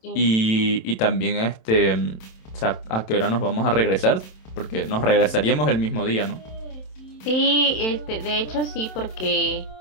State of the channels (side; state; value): right; late; 27 ms